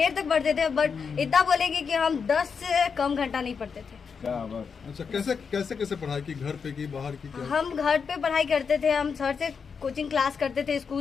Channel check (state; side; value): quieter; right; 5.9 dB